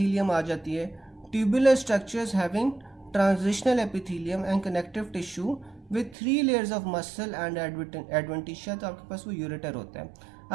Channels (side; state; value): left; drops out; at 6.2 s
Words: आ जाती है। Tubular structures having transitional epithelium and connective tissue with 3 layers of muscle and adventitia. तो आपके पास वो यूरेटर होता है।